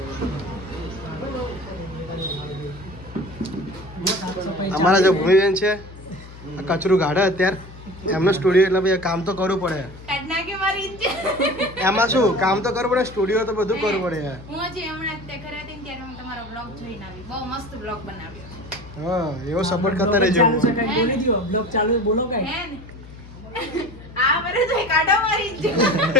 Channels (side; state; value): left; noise; hum, 17 dB below the sound